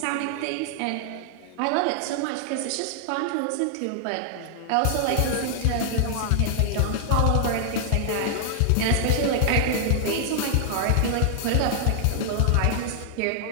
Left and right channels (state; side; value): different; both; correlation -0.01